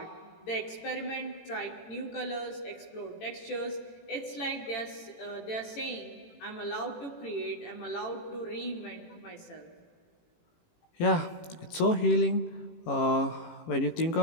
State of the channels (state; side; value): late; right; 18 ms